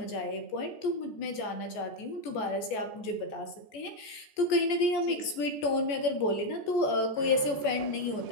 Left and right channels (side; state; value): right; late; 14 ms